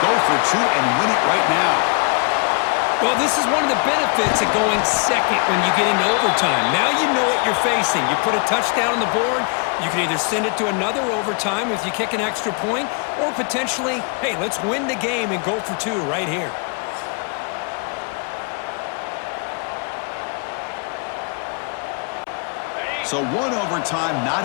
go for 2 and win it right now. Well, this is one of the benefits of going second when you get into overtime. Now you know what you're facing. You put a touchdown on the board, you can either send it to another overtime if you kick an extra point, or potentially, hey, let's win the game and go for 2 right here. So 1 overtime,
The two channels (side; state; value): right; quieter; 35.7 dB